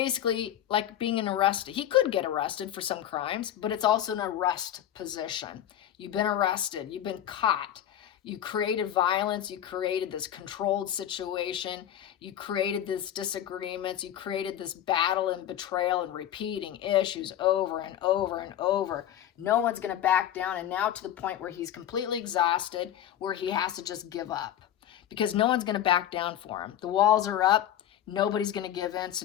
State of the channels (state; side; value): quieter; right; 11.1 dB